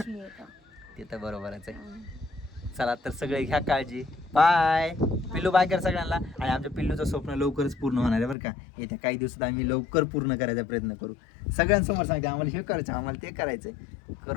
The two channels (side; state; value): right; drops out; at 8.3 s